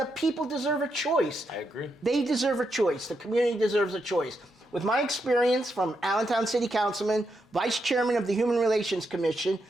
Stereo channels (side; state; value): both; normal; correlation 0.82